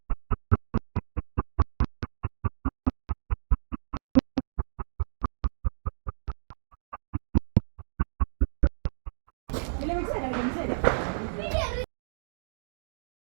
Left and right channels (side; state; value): left; silent; digital silence